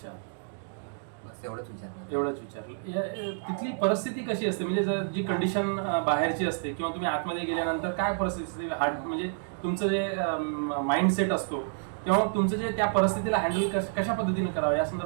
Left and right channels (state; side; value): silent; left; digital silence